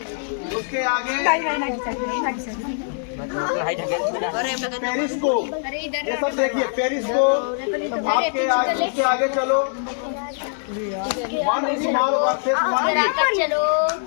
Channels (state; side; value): silent; right; 64 dB below the other